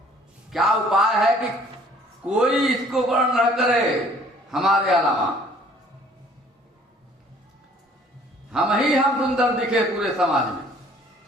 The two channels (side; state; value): both; normal; correlation 0.56